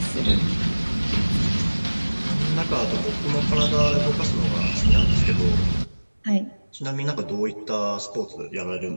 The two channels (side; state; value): both; inverted; correlation -1.00